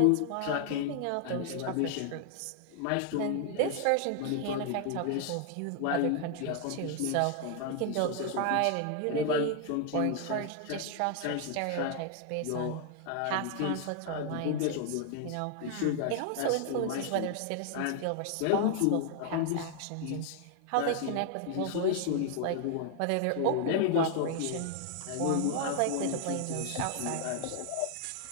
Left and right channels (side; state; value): both; different; correlation 0.00